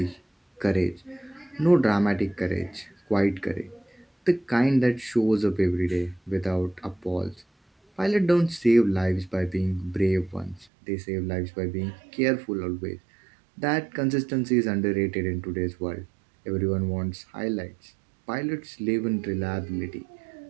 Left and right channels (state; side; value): drops out; left; at 10.7 s